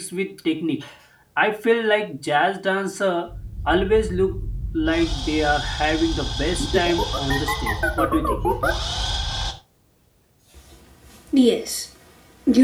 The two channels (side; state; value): both; identical; correlation 1.00